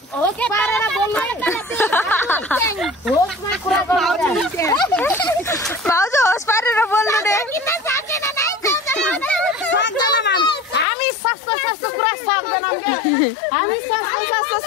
भाउजू होस पारेर बोल्नु रे हामी सस्तो कुरा सक्दैनौँ के हामी सस्तो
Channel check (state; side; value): drops out; right; at 10.9 s